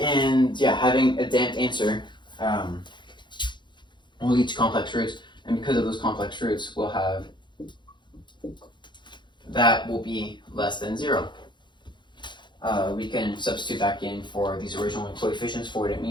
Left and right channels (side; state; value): right; late; 0.22 ms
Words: yeah, having a damped answer will lead to complex roots, and because of those complex roots, we'll have that will be less than 0. We can substitute back in for these original coefficients for what it